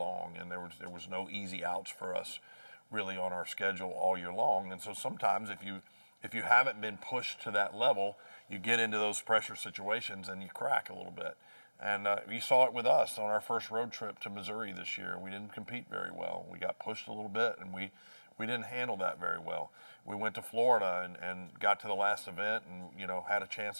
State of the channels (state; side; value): inverted; both; correlation -1.00